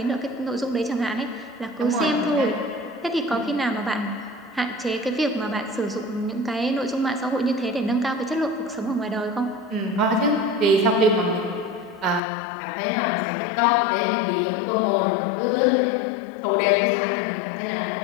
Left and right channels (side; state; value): right; drops out; at 12.2 s